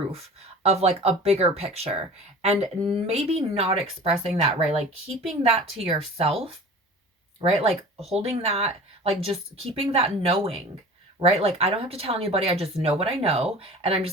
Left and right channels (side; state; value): both; normal; correlation 0.40